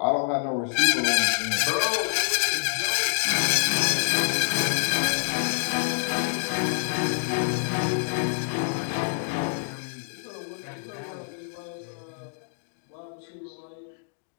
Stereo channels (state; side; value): silent; right; digital silence